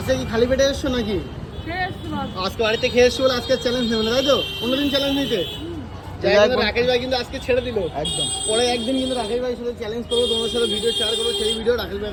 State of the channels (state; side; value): identical; both; correlation 1.00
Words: কি খালি পেটে এসছো নাকি? খেয়ে এসছি বাবা। আজকে বাড়িতে খেয়ে এসছো বলে আজকে চ্যালেঞ্জ নেবে না, তাই তো? অন্যদিন চ্যালেঞ্জ নিতে যাই হোক, রাকেশ ভাই কিন্তু আজকে ছেড়ে দিল। একদম। পরে একদিন কিন্তু রাকেশ ভাইয়ের সাথে চ্যালেঞ্জ করবো, তোমার সাথে ভিডিও শেয়ার করবো। সেই ভিডিও রাকেশ ভাই